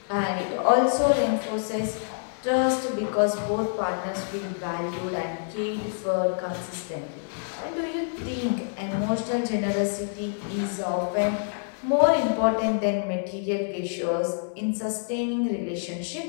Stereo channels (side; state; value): right; silent; digital silence